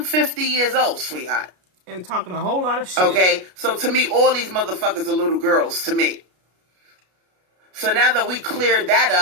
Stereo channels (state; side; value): late; left; 33 ms